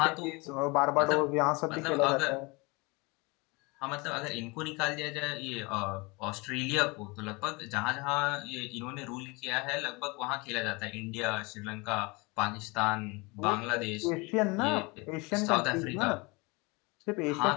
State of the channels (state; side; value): quieter; right; 26.7 dB